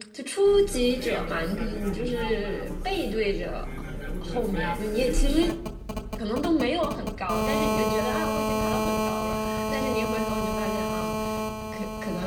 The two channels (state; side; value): identical; both; correlation 1.00